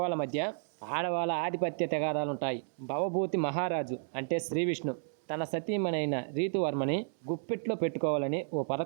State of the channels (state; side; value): silent; left; digital silence